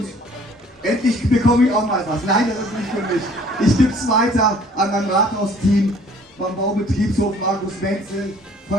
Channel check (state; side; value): normal; both; correlation 0.55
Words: endlich bekomme ich auch mal was. Nein, das ist nicht für mich. Ich gebe es weiter an mein Rathausteam, beim Baubetriebshof Markus Menzel,